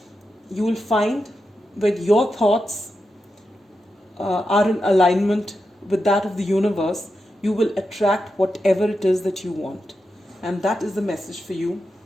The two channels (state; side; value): normal; both; correlation 0.88